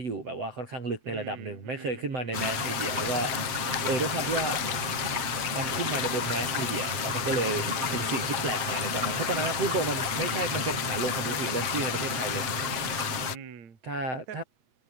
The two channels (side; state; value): left; late; 8.3 ms